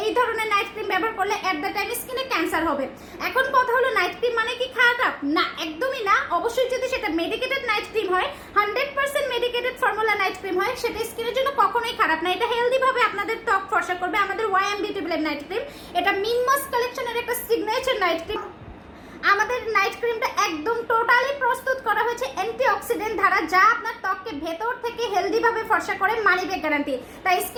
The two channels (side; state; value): both; identical; correlation 1.00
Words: এই ধরনের নাইট ক্রিম ব্যবহার করলে এট দ্য টাইম স্কিনে ক্যান্সার হবে। এখন কথা হলো নাইট ক্রিম মানে কি খারাপ? না, একদমই না। অবশ্যই যদি সেটা মেডিকেটেড নাইট ক্রিম হয়, 100% মেডিকেটেড ফর্মুলা নাইট ক্রিম হয়, সেটা স্কিনের জন্য কখনোই খারাপ না। এটা হেলদি ভাবে আপনাদের ত্বক ফর্সা করবে। আমাদের YM beauty blend night cream, এটা মিনমস কালেকশনের একটা সিগনেচার নাইট ক্রিম। আমাদের নাইট ক্রিমটা একদম টোটালি প্রস্তুত করা হয়েছে অ্যান্টিঅক্সিডেন্ট দ্বারা, যা আপনার ত্বককে ভেতর থেকে হেলদি ভাবে ফর্সা করে, মানি ব্যাক গ্যারান্টি। তাই